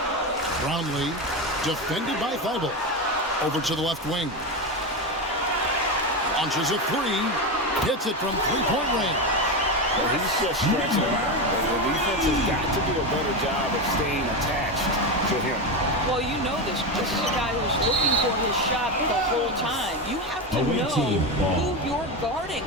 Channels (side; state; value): both; normal; correlation 0.15